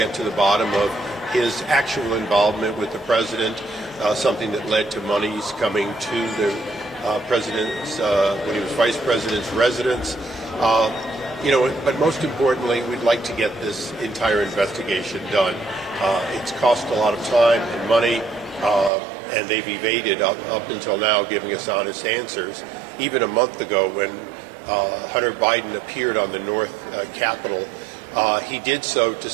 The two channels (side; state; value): left; drops out; at 18.9 s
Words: to the bottom of his actual involvement with the president, something that led to monies coming to the president's, when he was vice president's residence. But most importantly, we'd like to get this entire investigation done. It's cost a lot of time and money, and they've evaded up until now giving us honest answers. Even a month ago when Hunter Biden appeared on the North Capitol, he did so to